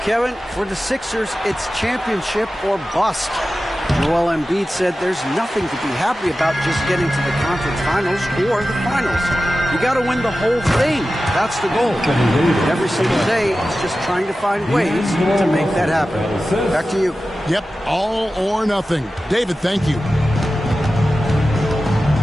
For the Sixers, it's championship or bust. Joel Embiid said there's nothing to be happy about just getting to the conference finals or the finals. You got to win the whole thing. That's the goal. And every single day, it's just trying to find ways to make that happen. Back to you. Yep, all or nothing. David, thank you.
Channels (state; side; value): normal; both; correlation 0.94